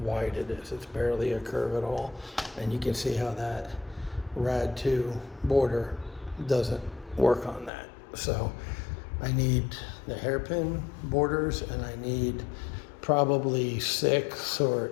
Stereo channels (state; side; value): drops out; right; at 7.7 s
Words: it is. It's barely a curve at all. And you can see how that Rad 2 border doesn't work on that. So I need the hairpin borders, and I need probably 6 or